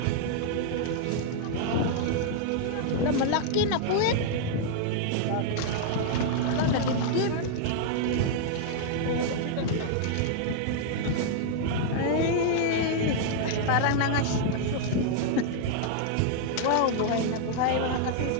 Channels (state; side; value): different; both; correlation -0.01